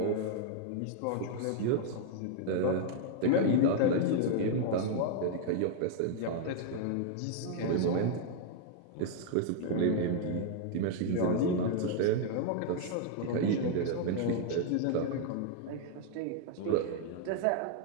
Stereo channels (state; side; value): different; both; correlation 0.00